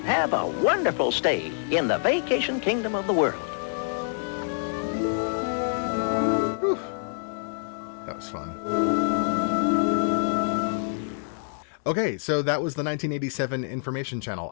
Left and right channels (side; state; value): right; silent; digital silence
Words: have a wonderful stay in the vacation kingdom of the world. Whew. That was fun. Okay, so that was the 1987 information channel.